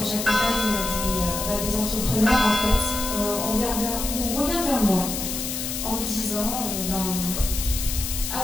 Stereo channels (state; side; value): noise; left; hiss, 4 dB below the sound